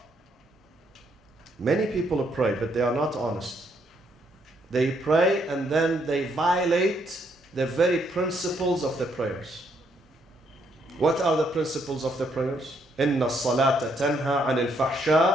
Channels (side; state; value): both; normal; correlation 0.72